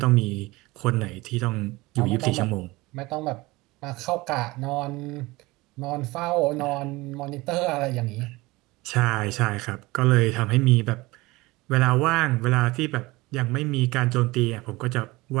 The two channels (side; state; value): left; quieter; 21.4 dB